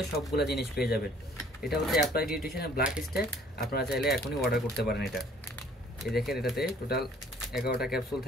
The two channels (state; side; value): normal; both; correlation 0.56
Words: সবগুলো জিনিস পেয়ে যাবেন। এটা হচ্ছে অ্যাপ্লাইড নিউট্রিশনের ব্ল্যাক স্ট্যাক। আপনারা চাইলে এখনই অর্ডার করতে পারেন এটা। এই দেখেন, এটাতে টোটাল 11টা ক্যাপসুল